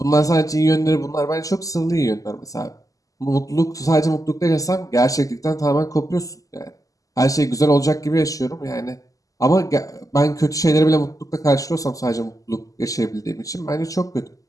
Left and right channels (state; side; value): late; right; 0.17 ms